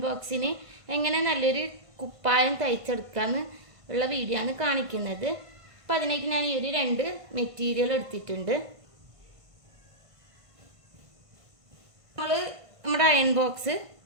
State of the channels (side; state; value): left; late; 1.5 ms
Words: ബോക്സിന് എങ്ങനെ നല്ലൊരു കുപ്പായം തയ്ച്ചെടുക്കാമെന്ന് ഉള്ള വീഡിയോ ആണ് കാണിക്കുന്നത്. അപ്പം അതിലേക്ക് ഞാൻ ഈ ഒരു 2 മെറ്റീരിയൽ എടുത്തിട്ടുണ്ട്. നമ്മൾ നമ്മുടെ അയൺ ബോക്സ്